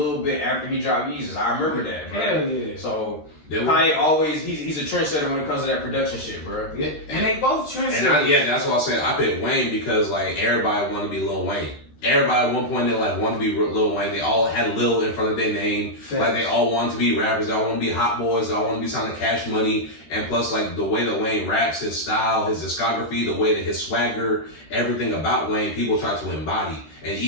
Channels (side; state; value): right; late; 13 ms